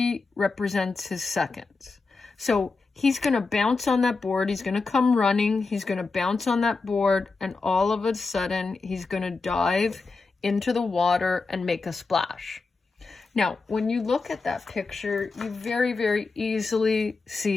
represents his seconds. So he's going to bounce on that board, he's going to come running, he's going to bounce on that board, and all of a sudden he's going to dive into the water and make a splash. Now, when you look at that picture, you very, very easily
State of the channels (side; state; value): right; quieter; 4.1 dB